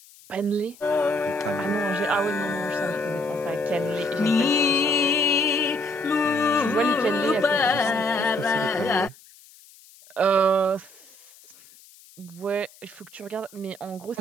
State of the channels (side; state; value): left; noise; hiss, 24 dB below the sound